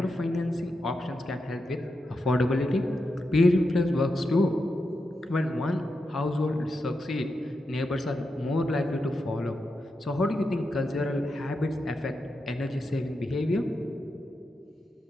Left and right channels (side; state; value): both; normal; correlation 0.87